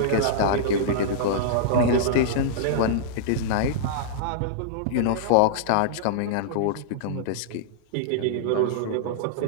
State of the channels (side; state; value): both; different; correlation -0.02